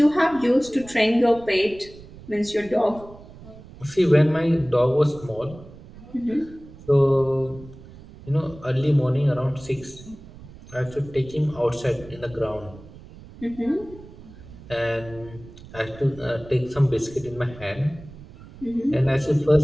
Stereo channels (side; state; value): right; noise; rumble, 18 dB below the sound